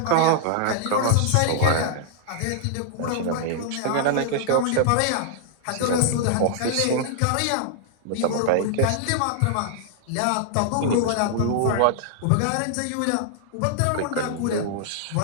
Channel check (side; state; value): both; different; correlation -0.01